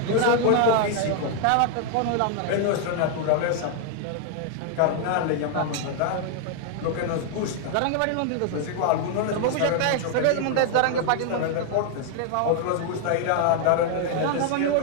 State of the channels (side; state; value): both; different; correlation 0.00